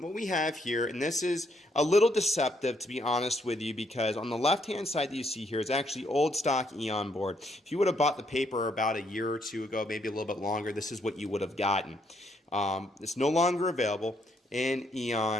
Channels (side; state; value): both; normal; correlation 0.73